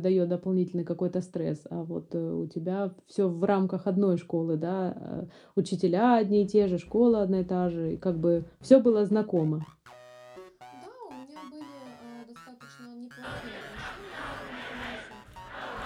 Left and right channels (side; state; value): both; identical; correlation 1.00